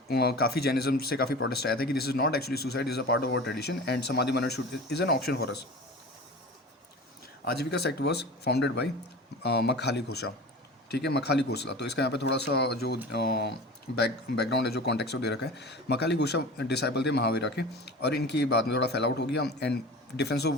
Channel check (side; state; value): both; normal; correlation 0.35